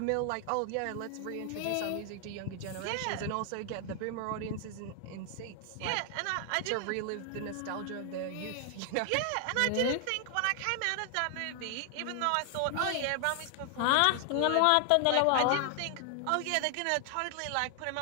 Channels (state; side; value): different; both; correlation 0.00